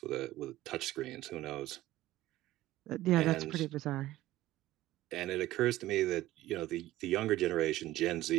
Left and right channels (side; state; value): left; quieter; 15.8 dB